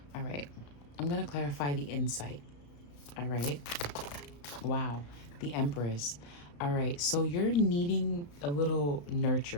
All right, I'm gonna clarify the insight. All right, wow, the Empress. All right, so you're needing a little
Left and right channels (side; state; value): right; late; 35 ms